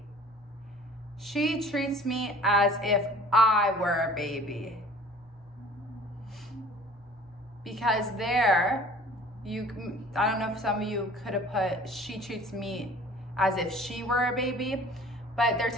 She treats me as if I were a baby. Because there, I don't know if some of you could have put, she treats me as if she were a baby, but they're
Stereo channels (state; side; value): normal; both; correlation 0.48